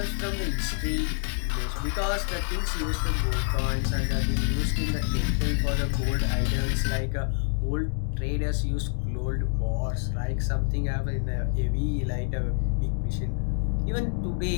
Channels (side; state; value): right; silent; 60 dB below the other